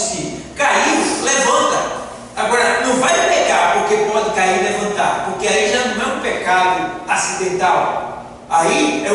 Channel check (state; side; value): identical; both; correlation 1.00